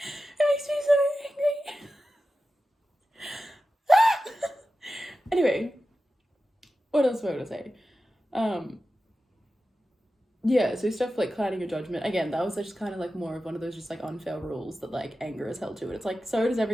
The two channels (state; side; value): normal; both; correlation 0.93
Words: makes me so angry. Anyway, what else was I going to say? Yeah, so stuff like clouding your judgment. Again, that was just kind of like more of one of those just like unfair rules that like anger is held to. And it's like, so does